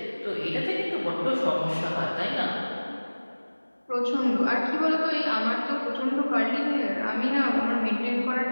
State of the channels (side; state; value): both; inverted; correlation -1.00